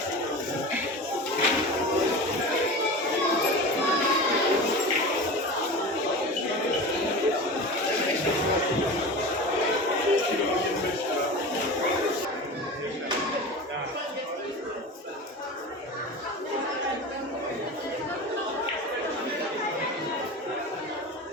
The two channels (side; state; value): both; normal; correlation 0.30